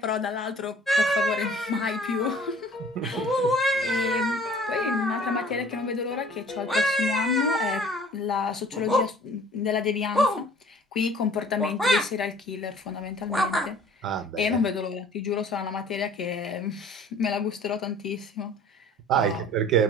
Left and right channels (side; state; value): both; normal; correlation 0.50